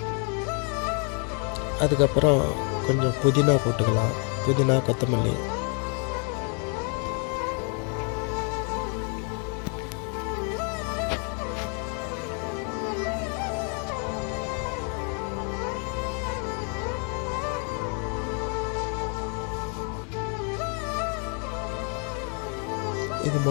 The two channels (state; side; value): quieter; right; 39.4 dB